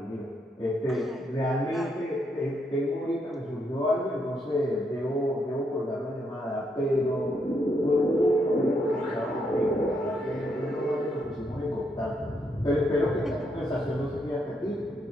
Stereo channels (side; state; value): both; normal; correlation 0.77